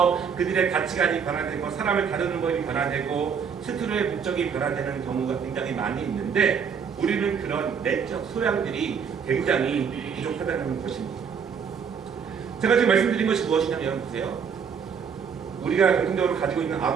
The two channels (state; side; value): quieter; left; 6.7 dB